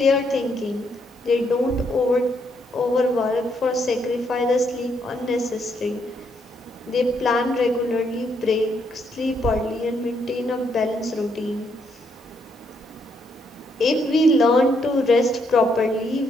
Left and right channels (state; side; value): normal; both; correlation 0.74